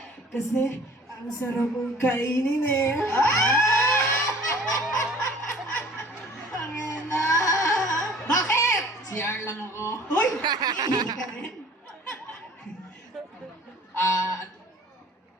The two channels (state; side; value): normal; both; correlation 0.49